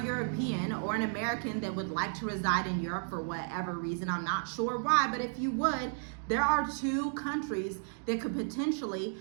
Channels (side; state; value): left; silent; digital silence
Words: European or an American that would like to reside in Europe for whatever reason, I'm not sure why, but if you would, there are 2 countries that could potentially